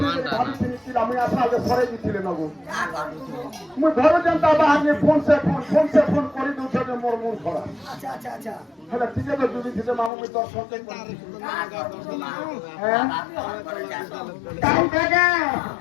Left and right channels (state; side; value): drops out; right; at 10.1 s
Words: ଭାବିଥିଲି କି ମୁଇଁ ଆସା ଯେ ସରେଇ ଦେଇଥିଲେ ନବୁ ମୁଇଁ ଘର ଯେନ୍ତା ବାହାରି ଫୋନ ସେ ଫୋନ କରି ଦଉଛ ଯେ ମୋର ମୁଣ୍ଡ ଖରାପ ହେଲେ ଟିକେ ତ ଜୁଡ଼ି ଥିଲେ ମାମୁ ମୁଇଁ ଦର୍ଶନ